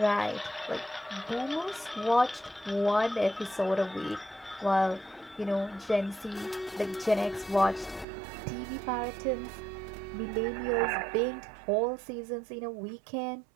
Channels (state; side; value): drops out; left; at 8.1 s